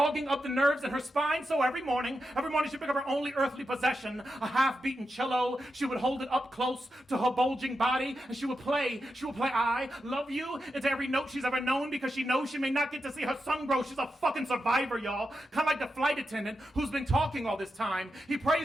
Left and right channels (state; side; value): normal; both; correlation 0.88